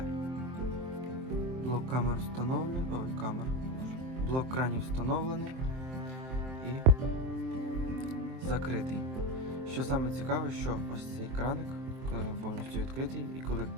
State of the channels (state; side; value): late; left; 23 ms